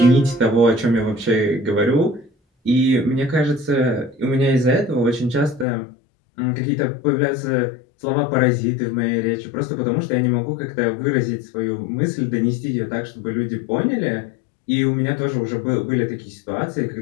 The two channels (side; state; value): right; drops out; at 5.7 s